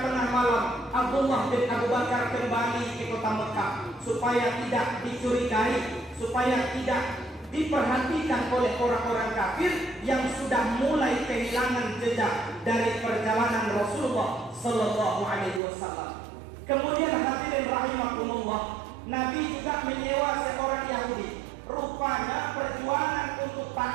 tengah malam Abdullah bin Abu Bakar kembali ke kota Mekah supaya tidak dicurigai, supaya tidak diperhatikan oleh orang-orang kafir yang sudah mulai kehilangan jejak dari perjalanan Rasulullah Sallallahu Alaihi Wasallam. Kemudian hadirin rahimakumullah, Nabi juga menyewa seorang Yahudi. Rupanya perjuangan untuk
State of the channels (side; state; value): left; drops out; at 15.6 s